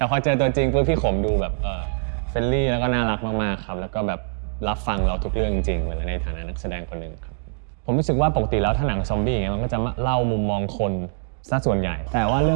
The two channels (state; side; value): silent; left; digital silence